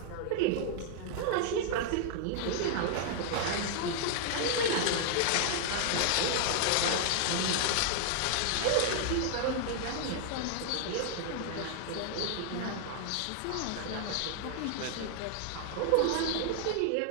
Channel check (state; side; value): different; both; correlation 0.00